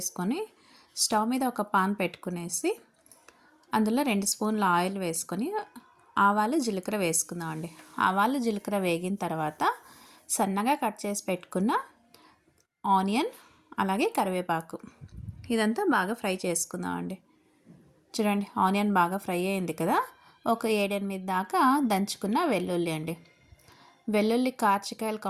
స్టవ్ మీద ఒక పాన్ పెట్టుకునేసి అందులో 2 స్పూన్ల ఆయిల్ వేసుకొని ఆవాలు జీలకర్ర వేసుకుందామండి. ఆవాలు జీలకర్ర వేగిన తర్వాత సన్నగా కట్ చేసి పెట్టుకున్న ఆనియన్ అలాగే కరివేపాకు ఇదంతా బాగా ఫ్రై చేసుకుందామండి. చూడండి, ఆనియన్ బాగా ఫ్రై అయింది కదా. ఒక 7-8 దాకా దంచుకున్న వెల్లుల్లి అండి. వెల్లుల్లి కార్చికాయల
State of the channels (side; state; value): both; identical; correlation 1.00